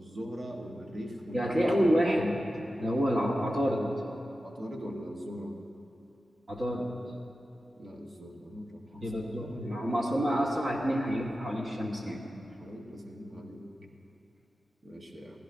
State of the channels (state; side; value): normal; both; correlation 0.93